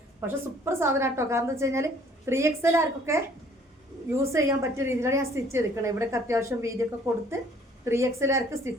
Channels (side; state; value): both; normal; correlation 0.58